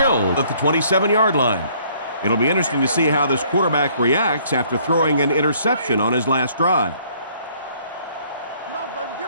at the 27-yard line. It'll be interesting to see how this quarterback reacts after throwing an interception on his last drive.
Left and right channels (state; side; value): inverted; both; correlation -0.61